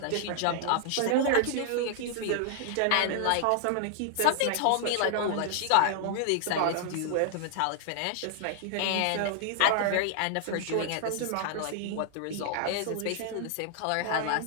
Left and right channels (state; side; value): different; both; correlation 0.00